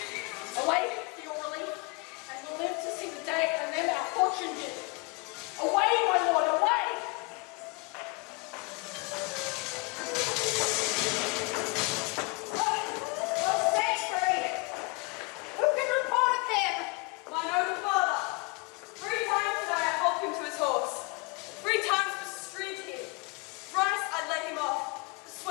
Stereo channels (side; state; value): right; quieter; 28.3 dB